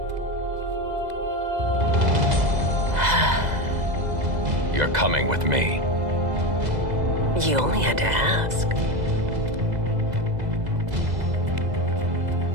You're coming with me. You only had to ask.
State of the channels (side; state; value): left; late; 2.0 ms